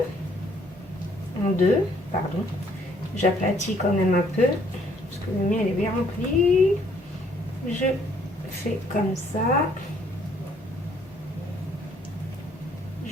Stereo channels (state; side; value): normal; both; correlation 0.64